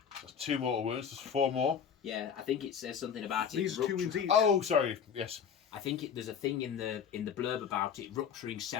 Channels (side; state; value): right; quieter; 7.5 dB